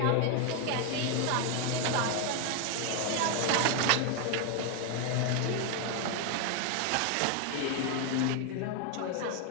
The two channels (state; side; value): different; both; correlation 0.01